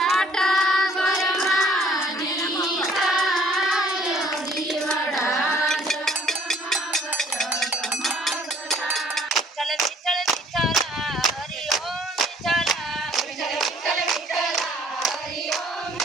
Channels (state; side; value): normal; both; correlation 0.58